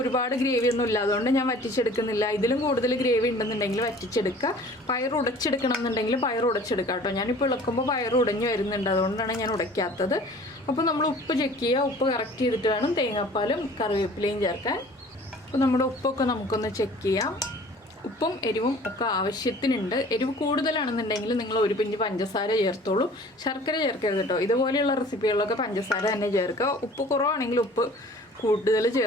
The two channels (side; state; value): both; normal; correlation 0.48